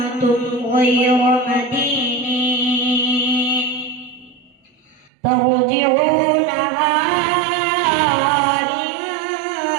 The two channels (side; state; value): left; drops out; at 5.1 s